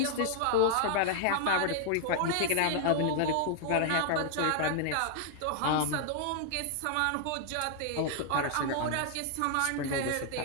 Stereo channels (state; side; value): different; both; correlation 0.00